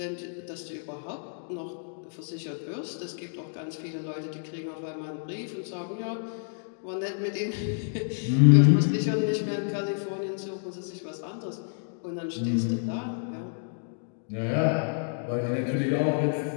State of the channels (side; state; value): right; silent; digital silence